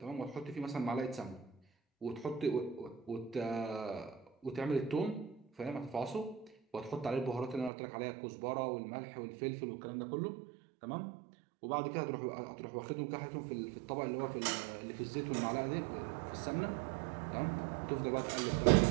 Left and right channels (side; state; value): left; drops out; at 7.7 s